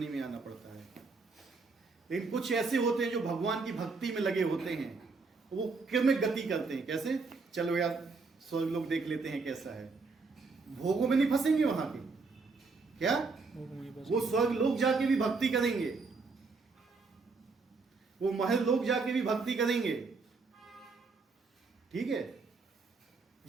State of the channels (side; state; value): left; quieter; 4.2 dB